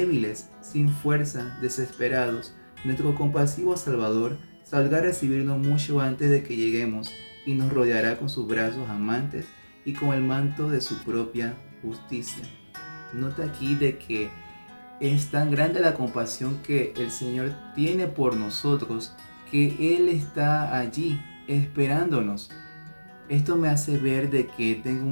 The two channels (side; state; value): both; inverted; correlation -1.00